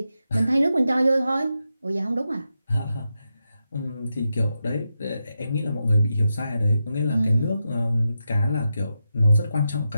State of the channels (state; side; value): inverted; both; correlation -0.88